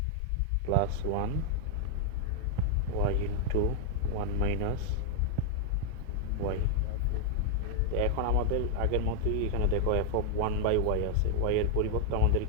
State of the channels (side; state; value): both; different; correlation 0.00